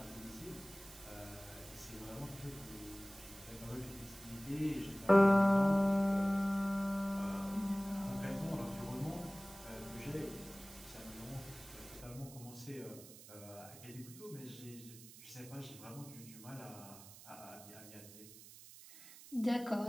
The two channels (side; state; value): right; noise; hiss, 17 dB below the sound